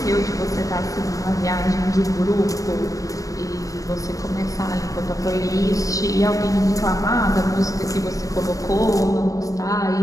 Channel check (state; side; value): late; right; 0.16 ms